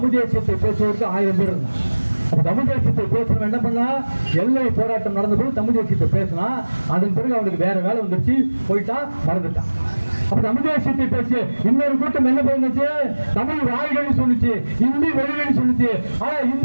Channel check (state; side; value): inverted; both; correlation -1.00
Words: தேசியத்தை பேசுவதற்கு 1000 பேர் இருந்தாங்க. தமிழ் தேசியத்தை பேசணும் என்ன பண்ணா, எல்லை போராட்டம் நடந்த போது தமிழ் தேசியத்தை பேசினா, அதன் பிறகு அவனுக்கு வேற வேலை வந்துருச்சு, போயிட்டா, மறந்துட்டான். அப்ப தமிழ் தேசியத்தை பேசிய இன்னொரு கூட்டம் என்ன பண்ணுச்சு, தமிழ் வாய்கள் சொல்லிச்சு, இந்தி மொழிகள் சொல்லிச்சு. ஆனா